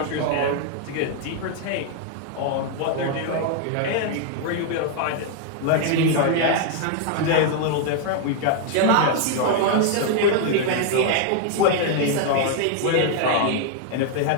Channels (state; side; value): different; both; correlation 0.00